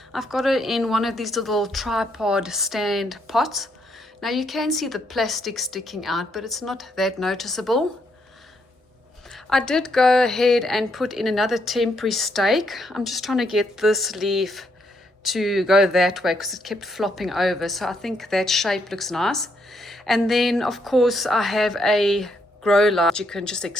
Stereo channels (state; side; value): normal; both; correlation 0.75